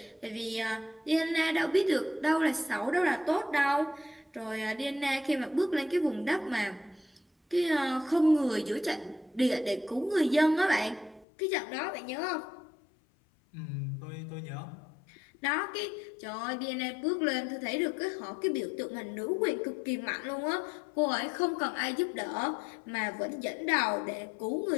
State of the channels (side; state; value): right; drops out; at 11.2 s